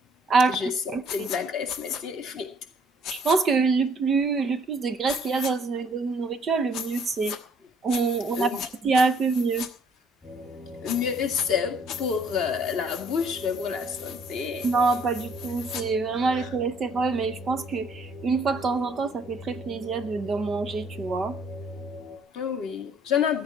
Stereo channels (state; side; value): normal; both; correlation 0.61